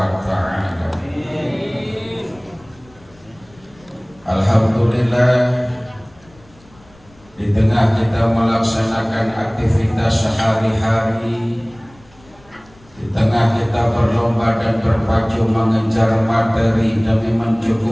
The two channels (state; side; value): noise; left; rumble, 28 dB below the sound